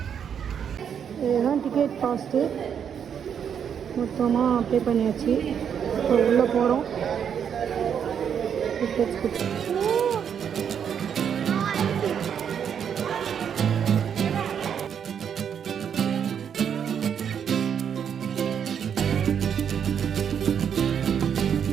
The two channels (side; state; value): left; quieter; 8.0 dB